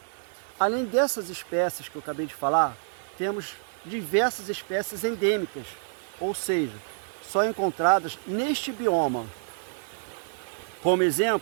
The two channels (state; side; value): silent; left; digital silence